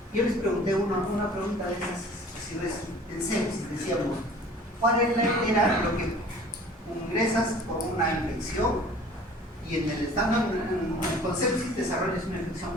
Yo les pregunté una pregunta de esas, si en sepsis, decíamos, ¿cuál era lo que ingresas por una infección y en el estado con sepsis desarrollas una infección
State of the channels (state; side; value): normal; both; correlation 0.47